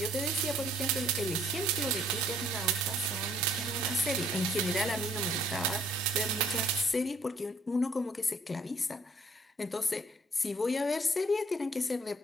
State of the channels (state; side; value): normal; both; correlation 0.62